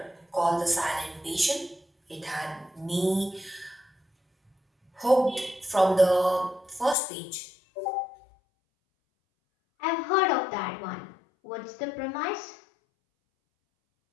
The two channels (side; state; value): right; drops out; at 7.0 s